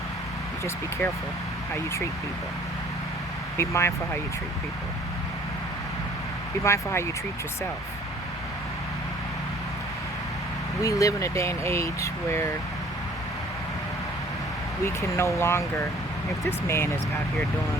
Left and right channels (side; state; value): both; normal; correlation 0.54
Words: You just be careful how you treat people. Be mindful how you treat people. Be mindful how you treat yourself. We live in a day and age where we can no longer, if this man is out here